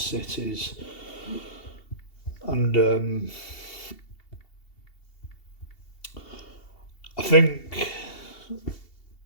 And I think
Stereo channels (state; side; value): late; right; 2.7 ms